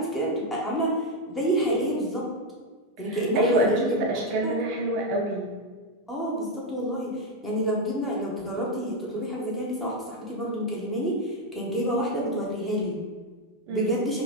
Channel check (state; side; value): normal; both; correlation 0.04